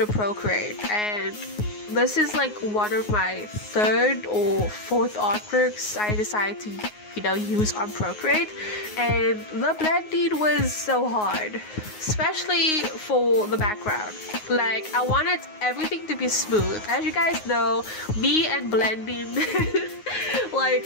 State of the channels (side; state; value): right; late; 9.5 ms